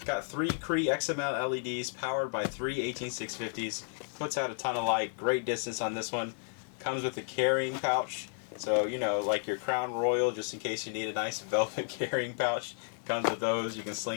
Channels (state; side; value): silent; right; digital silence